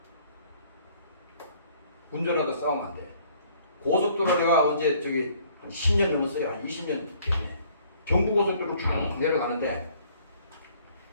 운전하다 싸우면 안 돼. 고속도로 내가 언제 저기 한 10년 넘었어요. 한 20년 됐네. 경부고속도로 쭉 내려가는데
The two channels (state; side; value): inverted; both; correlation -0.59